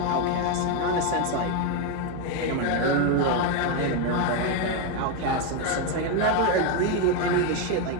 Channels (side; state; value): both; different; correlation 0.02